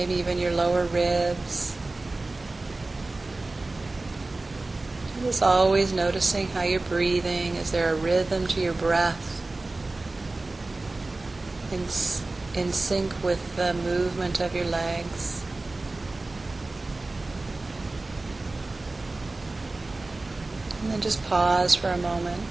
even your lower ribs. Just always noticing how you're breathing. Is there a rhythm to your breath in sync with the movement of your legs? And then just pause for a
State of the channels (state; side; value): quieter; left; 3.2 dB